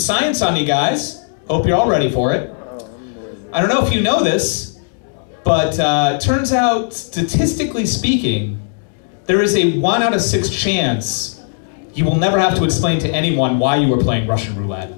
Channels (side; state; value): right; silent; digital silence